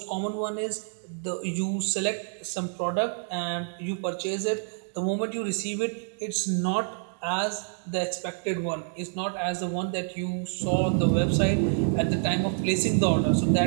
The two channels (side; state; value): left; silent; 60 dB below the other